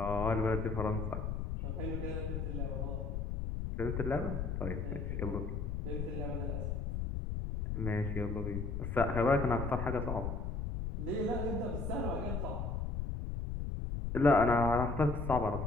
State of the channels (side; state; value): left; noise; rumble, 3 dB below the sound